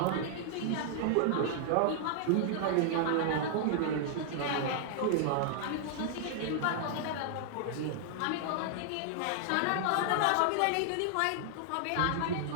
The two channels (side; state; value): both; different; correlation -0.01